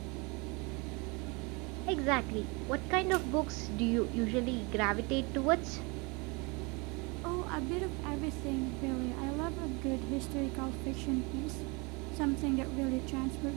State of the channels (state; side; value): quieter; left; 28.7 dB